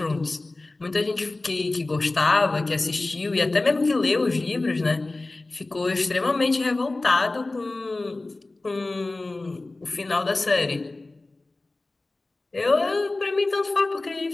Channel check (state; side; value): quieter; right; 3.1 dB